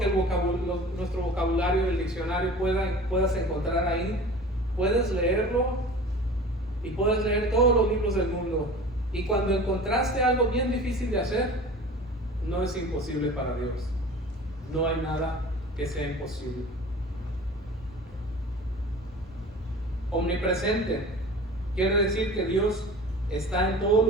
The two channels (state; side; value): normal; both; correlation 0.39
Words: nuestro vocabulario, el diccionario puedas encontrar ahí, puedes leerlo y puedes leer todos los libros del mundo. Y cuando encontraste algo bien difícil de hacer, no es imposible para Dios. No hay nada que sea imposible. Omnipresente quiere decir que Dios está en todo